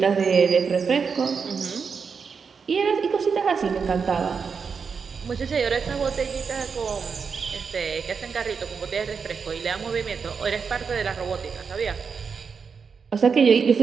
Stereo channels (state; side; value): quieter; left; 5.7 dB